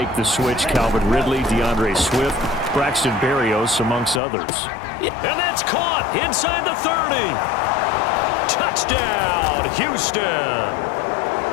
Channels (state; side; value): drops out; right; at 4.2 s